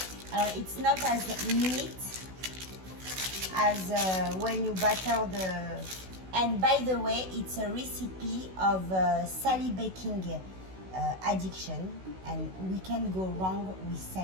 It's not as neat as when you butter the. And by the way, it's a recipe of Sally baking addiction, and we can go wrong with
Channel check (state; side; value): late; left; 16 ms